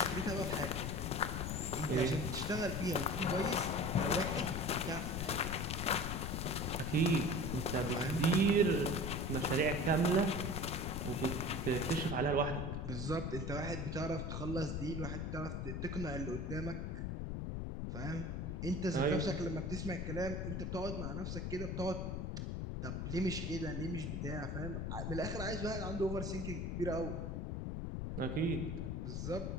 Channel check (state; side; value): noise; left; rumble, 3 dB below the sound